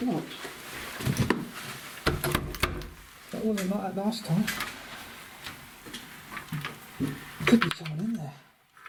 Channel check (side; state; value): both; identical; correlation 1.00